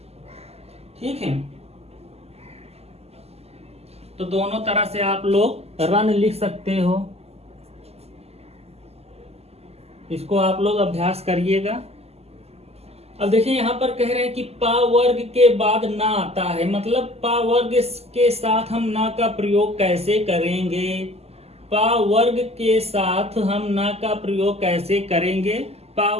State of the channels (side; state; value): left; late; 0.30 ms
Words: ठीक है, तो दोनों तरह से आप लोग रन लिख सकते हो, इसको आप लोग अभ्यास करिएगा। अब देखिए यहाँ पर कह रहे हैं कि पा वर्ग के बाद ना आता है, मतलब पा वर्ग के साथ हम ना का प्रयोग कैसे करेंगे, पा वर्ग के साथ हम ना का प्रयोग कैसे करेंगे। पा